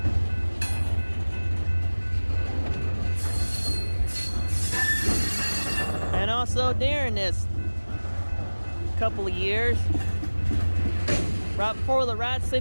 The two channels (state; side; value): inverted; both; correlation -1.00